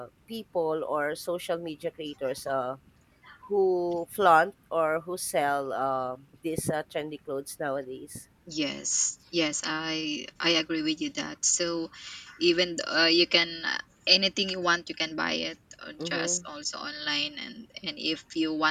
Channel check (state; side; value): identical; both; correlation 1.00